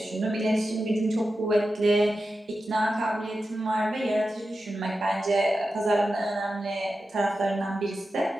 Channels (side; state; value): both; normal; correlation 0.91